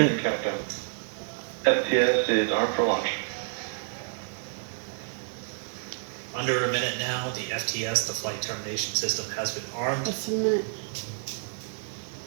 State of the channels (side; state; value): left; silent; 59 dB below the other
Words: Countdown. FTS is armed for launch. Under a minute now, the FTS, the flight termination system, has been armed. Just a minute.